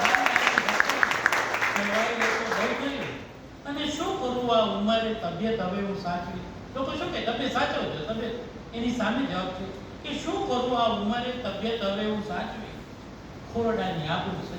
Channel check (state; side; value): identical; both; correlation 1.00